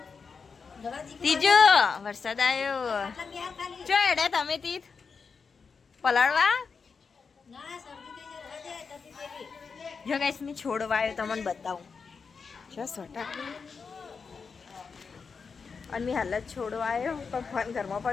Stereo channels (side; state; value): right; quieter; 5.3 dB